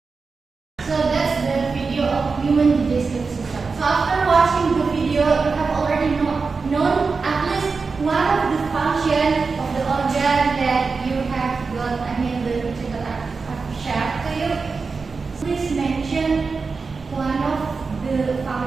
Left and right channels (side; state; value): left; quieter; 4.6 dB